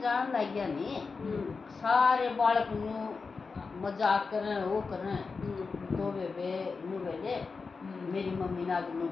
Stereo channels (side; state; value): right; quieter; 4.6 dB